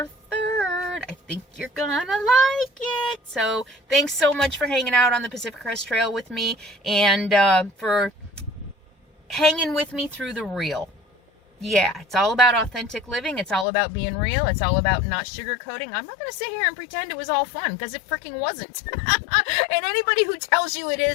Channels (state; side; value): drops out; right; at 13.7 s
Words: 3rd. I think you're gonna like it. So thanks so much for hanging out on the Pacific Crest Trail with me, and for hanging with me through the real. Yeah, it's all about authentic living. It's all about being real. It's all about not sugarcoating. I'm not going to sit here and pretend it was all fun, because it freaking wasn't. And anybody who tells you it